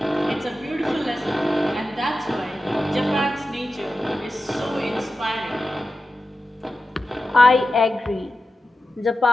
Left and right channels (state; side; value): normal; both; correlation 0.92